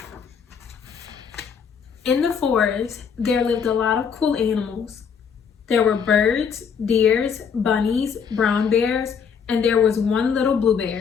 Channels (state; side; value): quieter; right; 6.7 dB